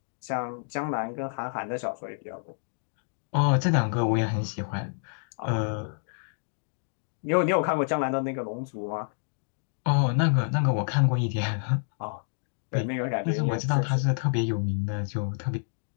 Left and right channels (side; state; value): right; silent; digital silence